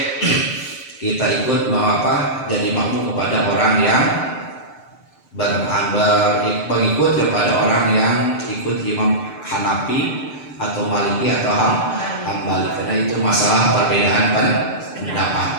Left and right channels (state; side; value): late; right; 6.7 ms